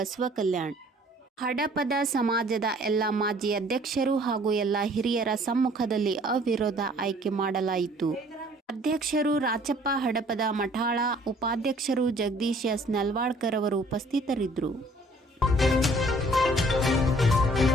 ಕಲ್ಯಾಣ. ಹಡಪದ ಸಮಾಜದ ಎಲ್ಲ ಮಾಜಿ ಅಧ್ಯಕ್ಷರು ಹಾಗೂ ಎಲ್ಲ ಹಿರಿಯರ ಸಮ್ಮುಖದಲ್ಲಿ ಅವಿರೋಧ ಆಯ್ಕೆ ಮಾಡಲಾಯಿತು. ಅಧ್ಯಕ್ಷರು ರಾಚಪ್ಪ ಹಡಪದ ಮಠಾಳ, ಉಪಾಧ್ಯಕ್ಷರು ಜಗದೀಶ್ ಎಸ್ ನಲ್ವಾಡ್ಕರ್ ಅವರು ಉಪಸ್ಥಿತರಿದ್ದರು.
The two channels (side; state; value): both; normal; correlation 0.56